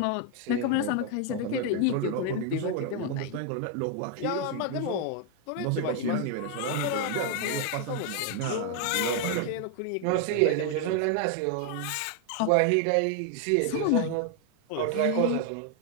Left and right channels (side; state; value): both; different; correlation 0.00